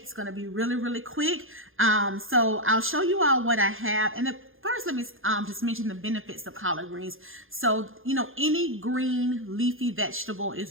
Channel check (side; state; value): left; late; 0.59 ms